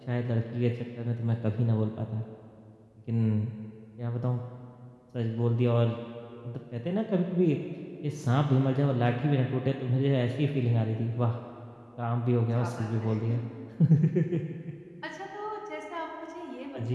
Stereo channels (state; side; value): identical; both; correlation 1.00